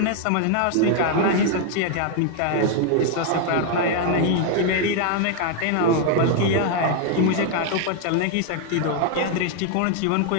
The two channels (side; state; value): both; different; correlation 0.00